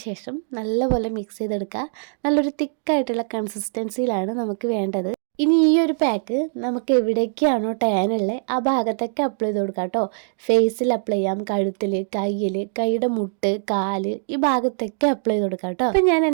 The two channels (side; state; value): left; silent; digital silence